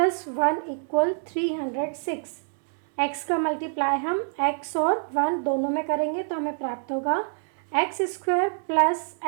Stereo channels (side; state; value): left; silent; digital silence